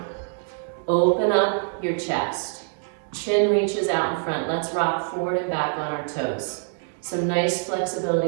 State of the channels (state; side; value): silent; left; 59 dB below the other